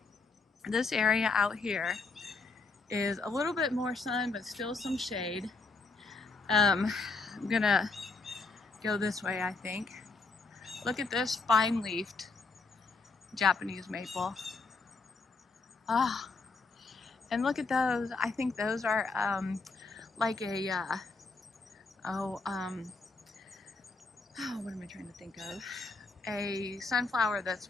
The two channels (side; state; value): right; quieter; 3.9 dB